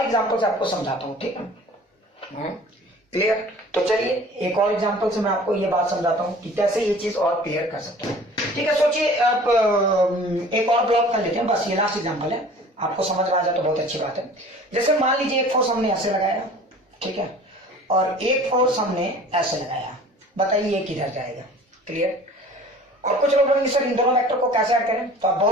एग्जांपल से आपको समझाता हूं, ठीक है? क्लियर? तो चलिए एक और एग्जांपल से मैं आपको ये बात समझाता हूं कि कैसे ये चीज और क्लियर कर सकते हैं। ठीक है, सोचिए आप एक और ब्लॉक कर लेते हैं, बस ये लास्ट एग्जांपल है, आपको समझ में आ जाए तो बहुत अच्छी बात है। जैसे मान लीजिए एक फोर्स हमने ऐसे लगाया, ठीक है, और एक फोर्स हमने ऐसे लगाया, बताइए ये किधर जाएगा? क्लियर? और कुछ लोग बोलेंगे सर इन दोनों वेक्टर को कैसे ऐड करें, तो आप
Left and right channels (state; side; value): normal; both; correlation 0.46